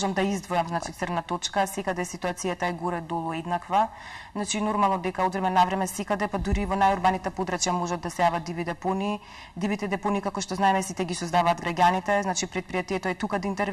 да издвојам, значи црна точка, секаде ситуацијата е горе-долу еднаква. Значи нормално дека од време на време секаде, па дури во најурбаните подрачја можат да се јават диви депонии. Дивите депонии, како што знаеме, сите ги создаваат граѓаните, значи предпријатието е тука да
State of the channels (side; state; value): both; identical; correlation 1.00